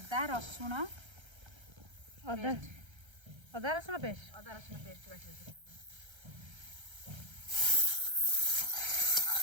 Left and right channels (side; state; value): left; late; 1.3 ms